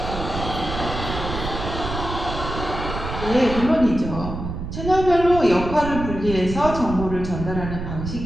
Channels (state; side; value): noise; right; rumble, 7 dB below the sound